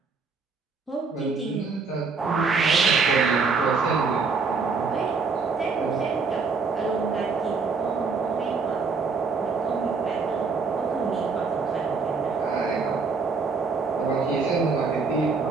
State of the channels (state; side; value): quieter; left; 4.7 dB